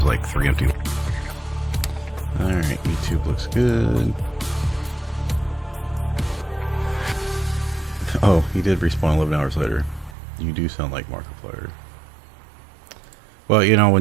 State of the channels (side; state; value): left; drops out; at 10.2 s